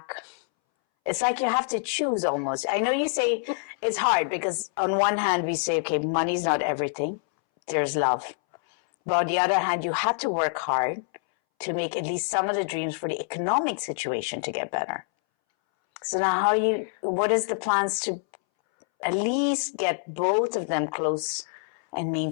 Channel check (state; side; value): silent; right; 61 dB below the other